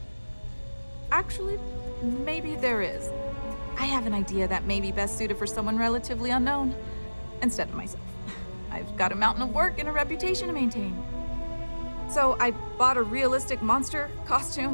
Actually, maybe there is. I have an idea that may be best suited for someone relatively unknown, instead of myself. I've got a mountain of work and a reputation to maintain. So I bought a realistic monster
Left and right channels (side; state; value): both; inverted; correlation -1.00